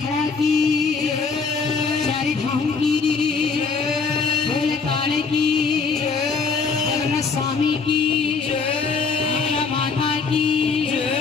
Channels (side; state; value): right; quieter; 5.0 dB